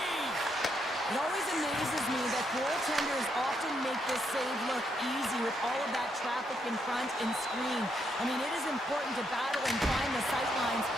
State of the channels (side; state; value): both; normal; correlation 0.77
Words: It always amazes me that goaltenders often make this save look easy with all of that traffic in front and screen. I mean, it is important to battle and find the sight lines,